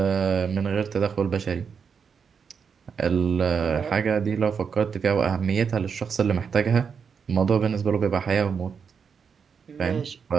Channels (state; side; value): quieter; left; 6.4 dB